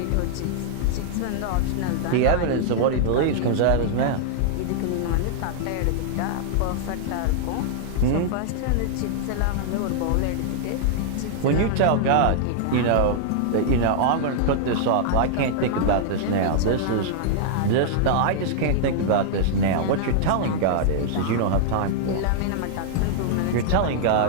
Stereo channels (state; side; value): different; both; correlation -0.01